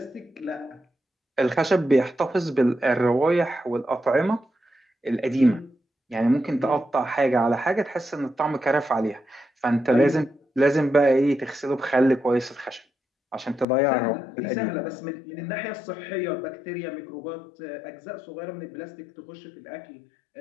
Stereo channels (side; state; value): right; drops out; at 13.7 s